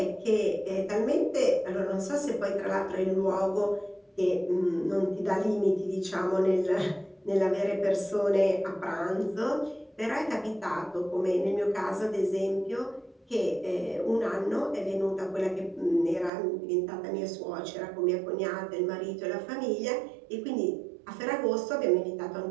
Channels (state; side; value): drops out; left; at 16.3 s